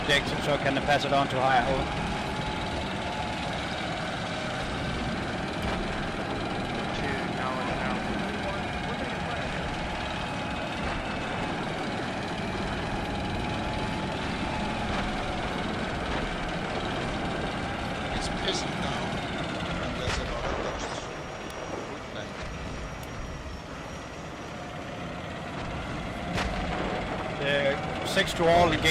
so I can pass it on to higher hold. It's pissing down, and there's a lot of dust. Good thing. 6 to all,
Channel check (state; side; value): identical; both; correlation 1.00